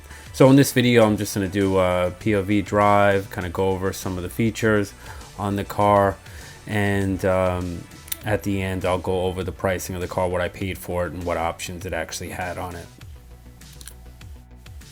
So in this video, I'm just going to do a POV drive, kind of go over some of the features on the car, and at the end, I'll go over the pricing of the car, what I paid for it, and what options it actually had on it.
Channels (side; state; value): both; identical; correlation 1.00